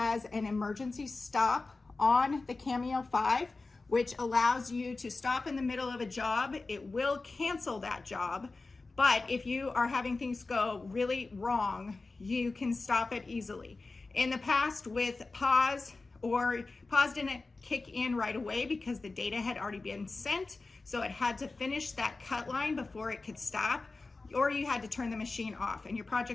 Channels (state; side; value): quieter; right; 3.6 dB